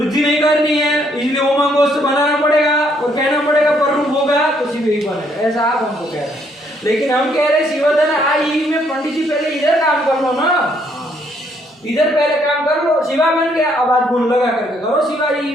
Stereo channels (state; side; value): normal; both; correlation 0.69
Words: नहीं करनी है इसलिए ओमांग गोष्ठ बनाना पड़ेगा और कहना पड़ेगा पर रूप होगा तो शिव ही बनेगा, ऐसा आप हमको कह रहे हैं। लेकिन हम कह रहे हैं शिवधन आ ई में पंडित जी पहले इधर काम कर लो ना, इधर पहले काम कर लो, शिवा बन गया, अब आप गुण लगा करके करो शिवा ई